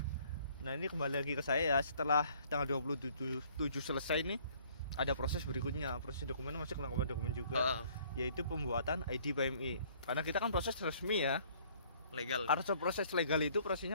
Nah, ini kembali lagi ke saya ya, setelah tanggal 27 selesai nih ada proses berikutnya, proses dokumen masih kelengkapan dokumen juga, yaitu pembuatan ID PMI. Karena kita kan proses resmi ya, legal. Harus proses legal itu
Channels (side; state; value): both; inverted; correlation -0.59